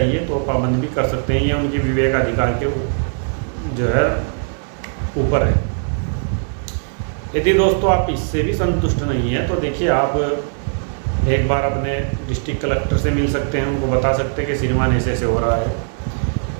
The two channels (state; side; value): silent; left; 58 dB below the other